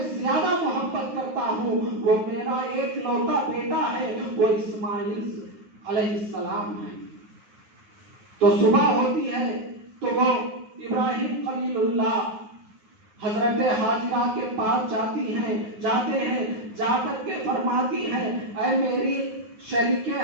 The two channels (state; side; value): late; left; 9.6 ms